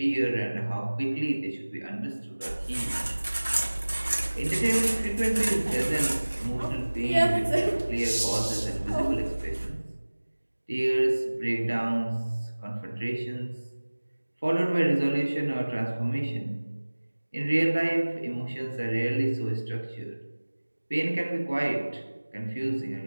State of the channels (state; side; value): inverted; both; correlation -1.00